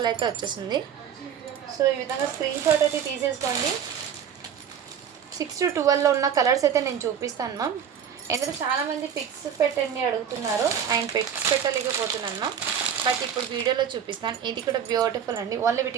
అయితే వచ్చేసింది. సో ఈ విధంగా స్క్రీన్ షాట్ అయితే తీసేసుకోండి. 6 to 12లో ఉన్న కలర్స్ అయితే నేను చూపిస్తాను మ్యామ్. ఎందుకంటే చాలామంది పిక్స్ పెట్టండి అడుగుతున్నారు, ఆయన పిక్స్ పెట్టలేకపోతున్నాను మ్యామ్. బట్ ఇప్పుడు వీడియోలో చూపిస్తాను. ఇది కూడా బ్యూటిఫుల్ అండి. ఓన్లీ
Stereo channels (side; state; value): left; quieter; 8.2 dB